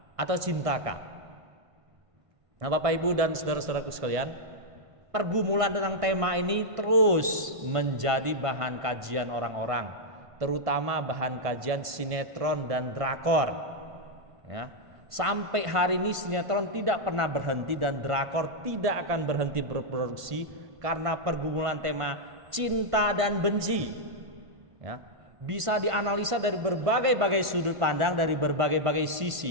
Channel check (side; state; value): left; late; 1.5 ms